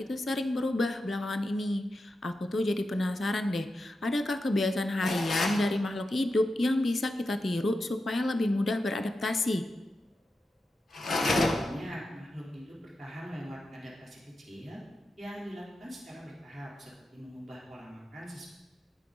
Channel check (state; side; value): normal; both; correlation 0.90